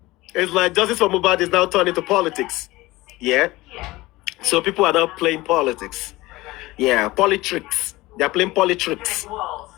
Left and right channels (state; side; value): quieter; right; 19.6 dB